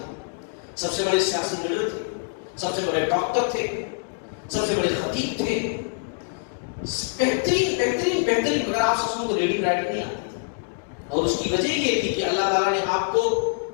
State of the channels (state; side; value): silent; right; digital silence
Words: سب سے بڑے سیاسی لیڈر تھے، سب سے بڑے ڈاکٹر تھے، سب سے بڑے خطیب تھے، بہترین بہترین بہترین، مگر آپ صلی اللہ علیہ وسلم کو ریڈنگ رائٹنگ نہیں آتی تھی. اور اس کی وجہ یہ تھی کہ اللہ تعالیٰ نے آپ کو